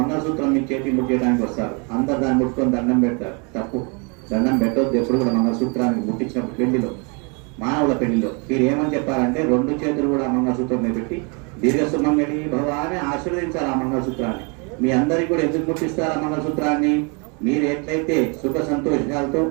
మీ చేతి ముట్టేయడానికి వస్తారు. అందరు దాన్ని ముట్టుకొని దండం పెడతారు. తప్పు, దండం పెట్టొద్దు ఎప్పుడు కూడా. మంగళసూత్రానికి ముట్టించినప్పుడు పెళ్లిలో, మానవుల పెళ్లిలో మీరు ఏమని చెప్పారంటే 2 చేతులు కూడా మంగళసూత్రం మీద పెట్టి దీర్ఘసుమంగళి భవ అని ఆశీర్వదించాలి ఆ మంగళసూత్రాన్ని. మీ అందరికీ కూడా ఎందుకు ముట్టిస్తారు ఆ మంగళసూత్రాన్ని? మీరు ఎట్లయితే సుఖ సంతోషాలతో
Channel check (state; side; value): quieter; left; 33.7 dB